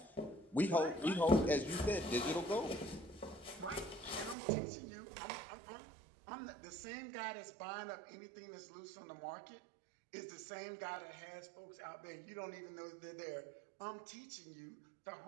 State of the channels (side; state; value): left; drops out; at 4.4 s